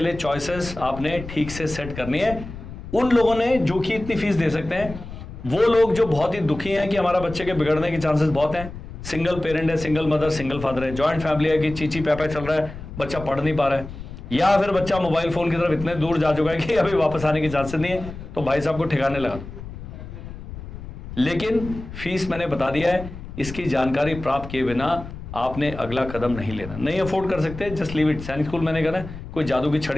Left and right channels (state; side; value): noise; left; rumble, 12 dB below the sound